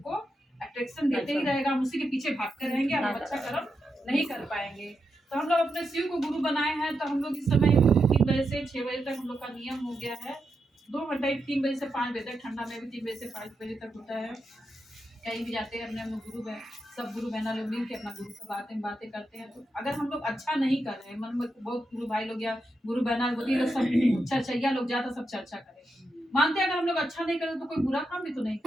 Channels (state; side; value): normal; both; correlation 0.85